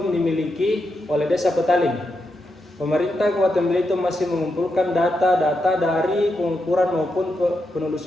dimiliki oleh Desa Petaling. Pemerintah Kabupaten Belitung masih mengumpulkan data-data dari pengukuran maupun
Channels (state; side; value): normal; both; correlation 0.84